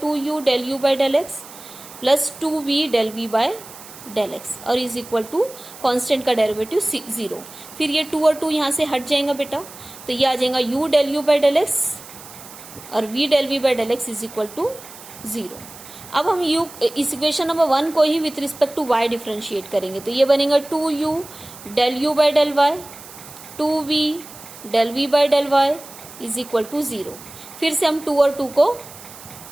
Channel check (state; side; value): noise; right; hiss, 17 dB below the sound